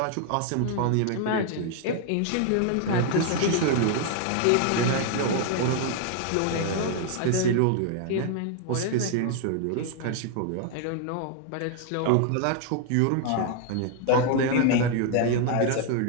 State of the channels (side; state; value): both; different; correlation 0.00